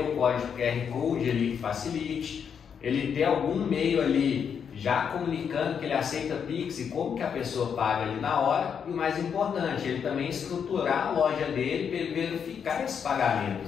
o código QR Code ali que facilite, ele ter algum meio ali já comunicando que ele aceita Pix e como que a pessoa paga ali na hora, e o mais importante, ele também estruturar a loja dele para ele verificar esses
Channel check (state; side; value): quieter; right; 7.3 dB